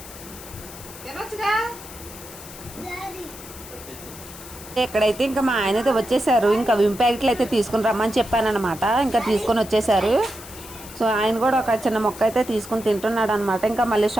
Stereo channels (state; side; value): noise; left; hiss, 16 dB below the sound